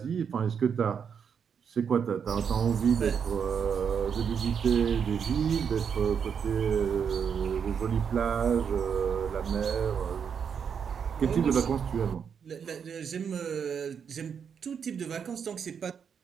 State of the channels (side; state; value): left; quieter; 7.1 dB